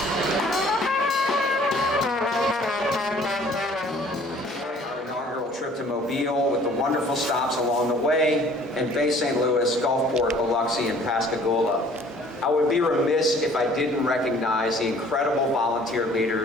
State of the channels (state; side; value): normal; both; correlation 0.54